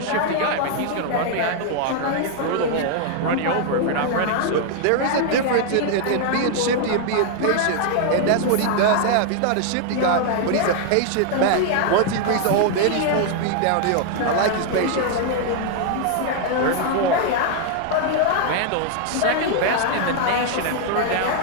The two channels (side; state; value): both; different; correlation 0.00